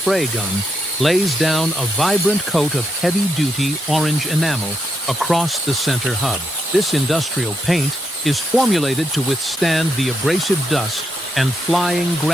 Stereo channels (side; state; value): both; normal; correlation 0.79